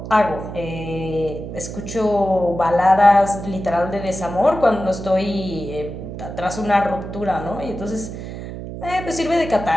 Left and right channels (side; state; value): right; noise; hum, 9 dB below the sound